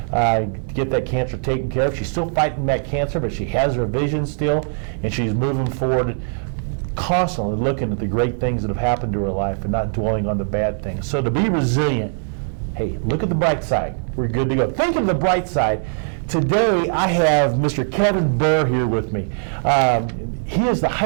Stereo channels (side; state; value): left; silent; digital silence